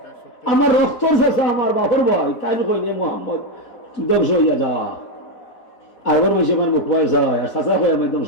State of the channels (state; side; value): late; right; 4.0 ms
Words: আমার রক্তর চাষা আমার বাভর ভাই তাই কই নে মোহাম্মদ ধ্বংস হইয়া যা আরবার মাসে আমার মুখ পায় যায় আর চাচা হয় আমার একদম